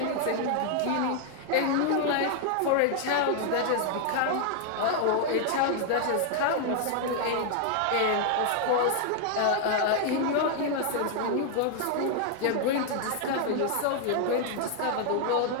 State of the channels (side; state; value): both; different; correlation 0.00